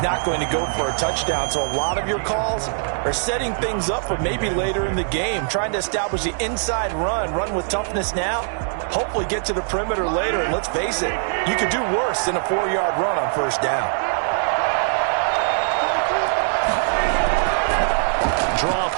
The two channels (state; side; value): silent; left; digital silence